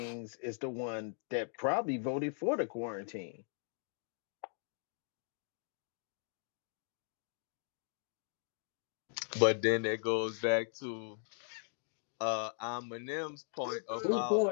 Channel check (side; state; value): right; silent; digital silence